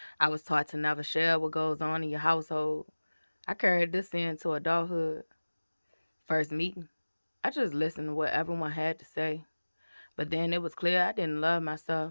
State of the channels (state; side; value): inverted; both; correlation -1.00